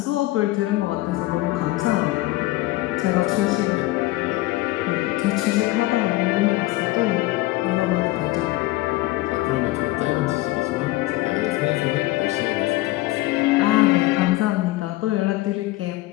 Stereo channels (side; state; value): right; quieter; 18.5 dB